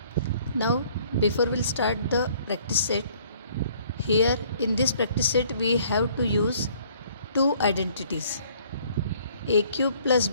Now, before we'll start the practice set, here in this practice set we have to use two identities, a cube plus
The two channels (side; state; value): both; inverted; correlation -0.59